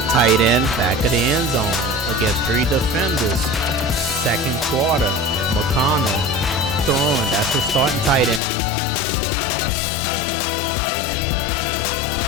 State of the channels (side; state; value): right; drops out; at 8.4 s